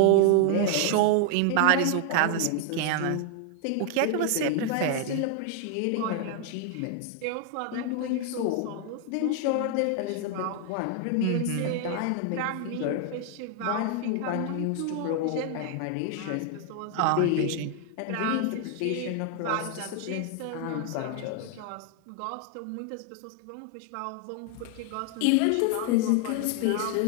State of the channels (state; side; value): different; both; correlation 0.00